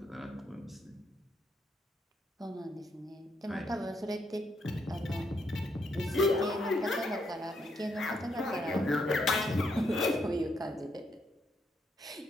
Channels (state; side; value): normal; both; correlation 0.76